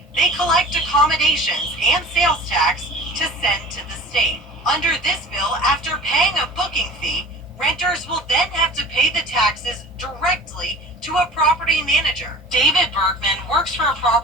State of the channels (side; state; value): both; normal; correlation 0.41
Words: they collect accommodations and sales tax to send to the state. Under this bill, after paying a booking fee, renters will then have to pay the taxes directly to a property manager. David Bergman works for a